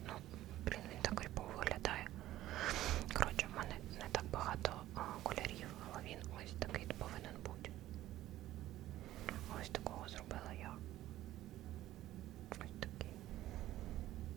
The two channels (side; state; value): left; quieter; 14.5 dB